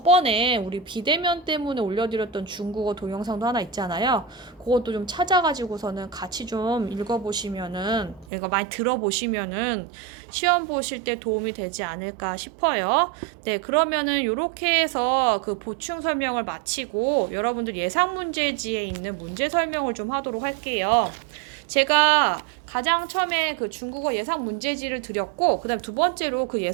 우리 비대면 때문에 올려드렸던 중국어 동영상도 하나 있잖아요. 그것도 좀 찾아가지고서는 같이 좀 읽어보시면은 이거 많이 들어보시면은 시험 보실 때 도움이 되지 않을까 싶어요. 네, 그러면은 요렇게 해서 그 보충 설명을 마치고 여러분들 예상 문제지에 있는 문제 설명을 좀 하도록 할게요. 제가 가장 처음에 그 중국어 예상 문제지를 드렸고, 그 다음에 두 번째로 그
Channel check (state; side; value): drops out; left; at 8.2 s